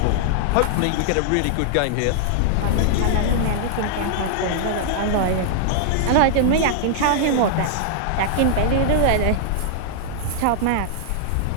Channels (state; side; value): different; both; correlation -0.01